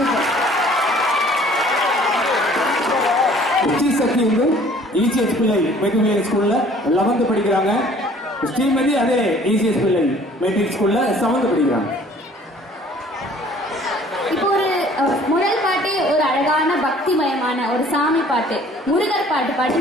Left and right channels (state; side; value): normal; both; correlation 0.54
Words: சக்தி வந்து இசிஎஸ் பிள்ளை மெட்ரிக் ஸ்கூல்ல 11th படிக்கிறாங்க. ஸ்ரீமதி அதே இசிஎஸ் பிள்ளை மெட்ரிக் ஸ்கூல்ல 7th படிக்கிறாங்க. இப்போ ஒரு முதல் பாட்டு ஒரு அழகான பக்திமயமான ஒரு சாமி பாட்டு முருகர் பாட்டு பாடி